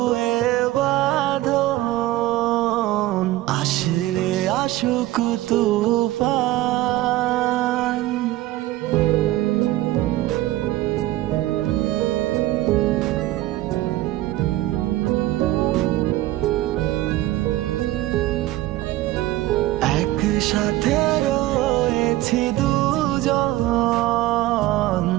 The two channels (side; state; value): left; quieter; 16.3 dB